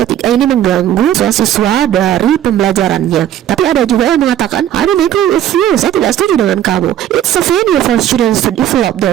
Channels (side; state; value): left; quieter; 11.4 dB